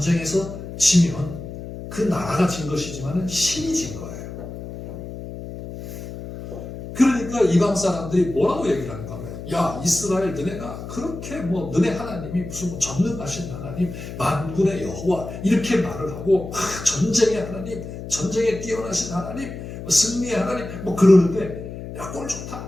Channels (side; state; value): left; noise; hum, 10 dB below the sound